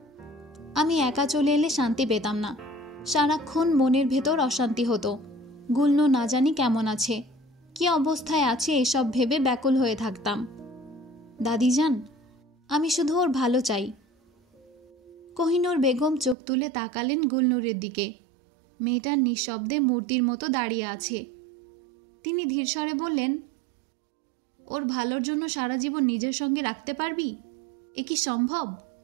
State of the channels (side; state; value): left; drops out; at 16.4 s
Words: আমি একা চলে এলে শান্তি পেতাম না। সারাক্ষণ মনের ভেতর অশান্তি হতো। গুলনূর না জানি কেমন আছে, কি অবস্থায় আছে এসব ভেবে ব্যাকুল হয়ে থাকতাম। দাদিজান, আমি শুধু ওর ভালো চাই। কোহিনূর বেগম চোখ তুলে তাকালেন গুলনূরের দিকে। মেয়েটা নিঃশব্দে মূর্তির মতো দাঁড়িয়ে আছে। তিনি ধীরস্বরে বললেন, ওর ভালোর জন্য সারা জীবন নিজের সঙ্গে রাখতে পারবি? এ কি সম্ভব?